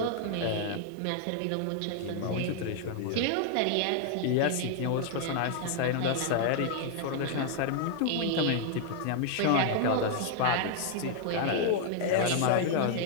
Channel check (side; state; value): both; different; correlation 0.00